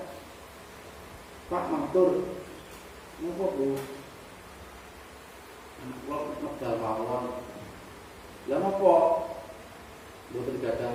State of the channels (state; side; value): identical; both; correlation 1.00